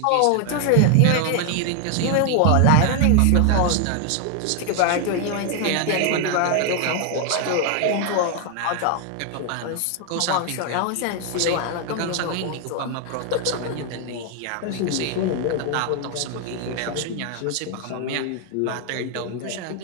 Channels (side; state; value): both; different; correlation 0.00